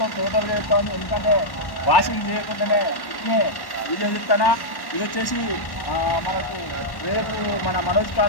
టోటల్గా చెప్తాను, ఎందుకంటే వాషింగ్ చేయకుండానే ఇట్నే వీడియో చెప్తానా. ఇది వచ్చేసి మనకు రేపు మన మనోజ్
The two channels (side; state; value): right; late; 1.1 ms